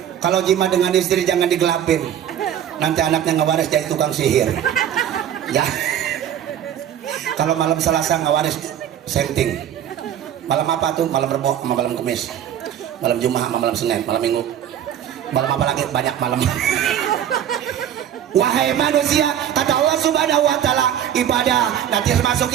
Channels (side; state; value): left; quieter; 10.1 dB